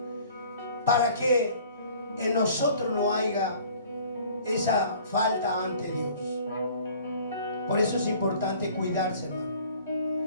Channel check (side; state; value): both; inverted; correlation -0.51